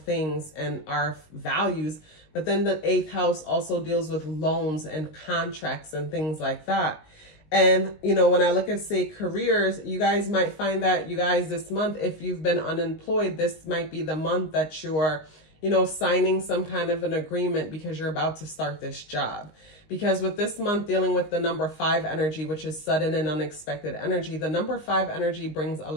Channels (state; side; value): late; right; 19 ms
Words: and our values. But then the 8th house also deals with loans and contracts and things like that. And, you know, when I look at, say, careers, you guys might find that you guys this month, if you've been unemployed, this might be the month that you're, you know, signing some kind of an agreement because you're about to start this job. Because with this month dealing with the number 5 energy, which is sudden and unexpected energy, the number 5 energy brings a